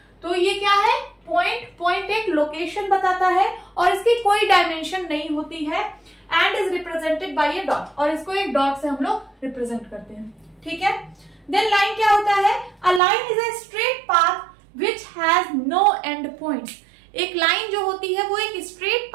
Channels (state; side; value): drops out; left; at 13.0 s